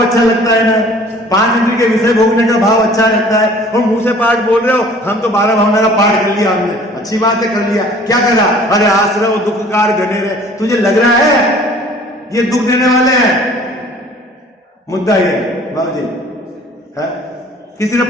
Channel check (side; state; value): both; normal; correlation 0.51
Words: अच्छा लगता है ना, 5 इंद्रिय के विषय भोगने का भाव अच्छा लगता है, और मुंह से पाठ बोल रहे हो, हम तो 12 भावना का पाठ कर लिया हमने, अच्छी बात है, कर लिया, क्या करा, अरे आश्रव दुखकार घनेरे, तुझे लग रहा है ये दुख देने वाले हैं, मुद्दा ये बाबू जी है कि